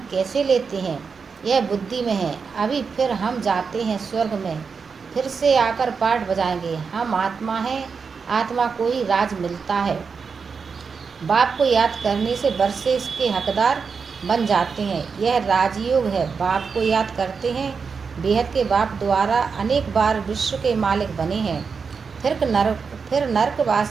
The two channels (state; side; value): quieter; left; 5.5 dB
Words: कैसे लेते हैं यह बुद्धि में है। अभी फिर हम जाते हैं स्वर्ग में, फिर से आकर पाठ बजाएंगे। हम आत्मा हैं, आत्मा को ही राज मिलता है। बाप को याद करने से वर्षे इसके हकदार बन जाते हैं। यह राजयोग है। बाप को याद करते हैं, बेहद के बाप द्वारा अनेक बार विश्व के मालिक बने हैं, फिर